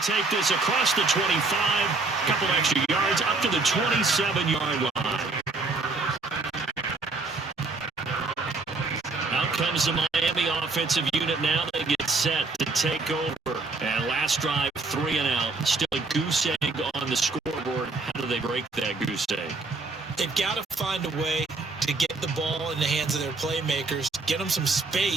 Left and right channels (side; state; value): left; quieter; 3.7 dB